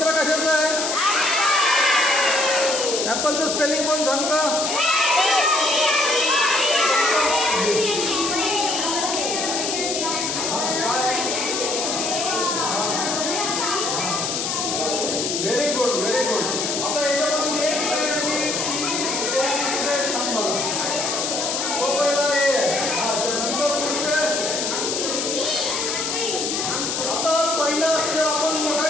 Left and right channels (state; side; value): noise; left; hiss, 1 dB below the sound